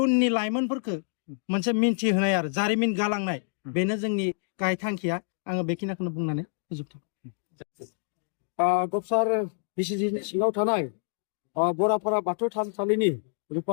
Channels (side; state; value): right; silent; digital silence